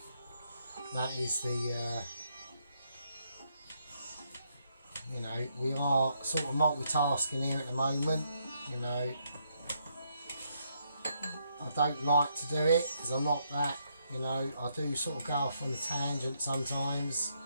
that is the, we are sort of multitasking here at the moment, I don't like to do it because I'm not that, I do sort of go off on a tangent sometimes,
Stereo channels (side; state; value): both; inverted; correlation -0.75